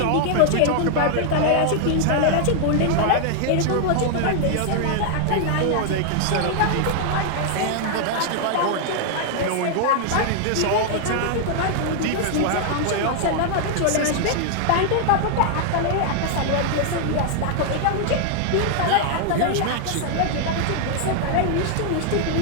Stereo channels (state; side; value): different; both; correlation 0.00